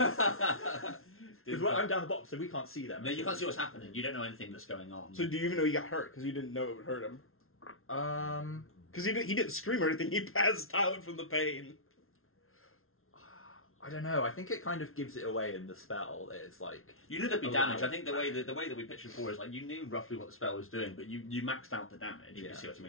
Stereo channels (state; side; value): late; right; 0.62 ms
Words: Did- Because I'm down the bottom, so we can't see them. No, you can't see what's happening. You don't know anything that's going on. So do you even know he got hurt? Because you didn't know it would hurt him. Because he didn't scream or anything. He passed out from the pain. I don't know. I think it kind of gives it away in the spell. It's like You knew there'd be Allow- damage. I think the way that we pitched before is like you knew roughly what the spell was doing, but you maxed out the damage. If you Yeah. see what I